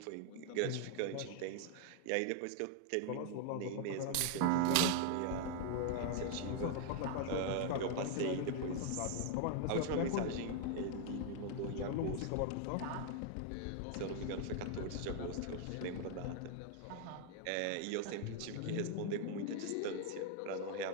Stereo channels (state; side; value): different; both; correlation 0.00